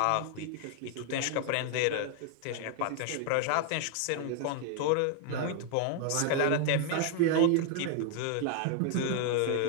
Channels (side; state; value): both; different; correlation 0.00